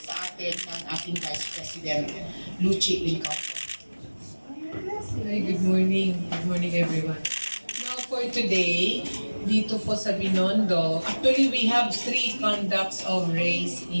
sa atin ng ating Vice President, Lucy Lincauco. Hi, good morning. Good morning, everyone. Now for today, dito po sa Binondo, actually we have 3 conducts of race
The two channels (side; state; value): both; inverted; correlation -1.00